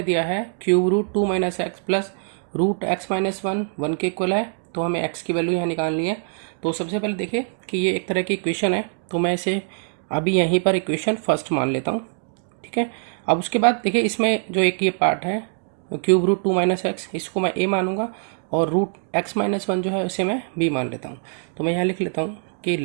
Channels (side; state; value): left; silent; 61 dB below the other